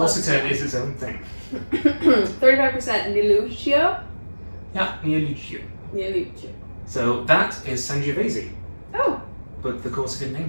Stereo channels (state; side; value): inverted; both; correlation -1.00